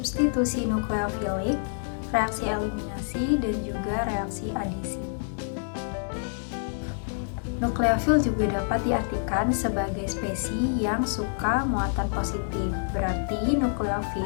nukleofilik, reaksi eliminasi, dan juga reaksi adisi. Nukleofil juga dapat diartikan sebagai spesies yang suka muatan positif. Berarti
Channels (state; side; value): silent; right; digital silence